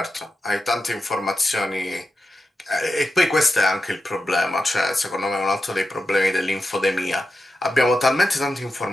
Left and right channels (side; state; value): both; normal; correlation 0.90